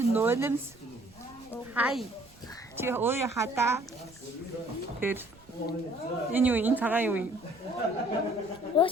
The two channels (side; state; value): right; noise; rumble, 25 dB below the sound